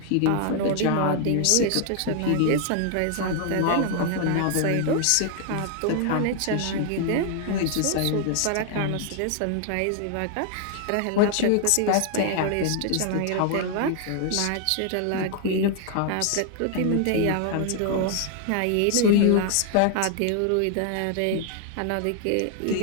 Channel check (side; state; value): both; different; correlation 0.00